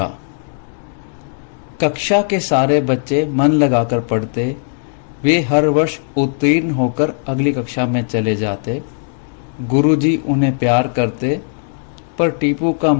कक्षा के सारे बच्चे मन लगाकर पढ़ते, वे हर वर्ष उत्तीर्ण होकर अगली कक्षा में चले जाते। गुरुजी उन्हें प्यार करते, पर टीपू का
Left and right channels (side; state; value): right; silent; 68 dB below the other